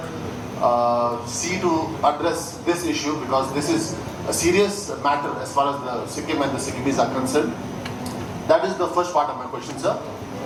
see to address this issue, because this is a serious matter as far as the Sikkim and the Sikkimis are concerned? That is the first part of my question, sir.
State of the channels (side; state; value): both; identical; correlation 1.00